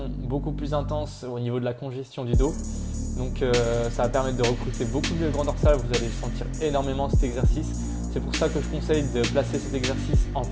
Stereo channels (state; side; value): identical; both; correlation 1.00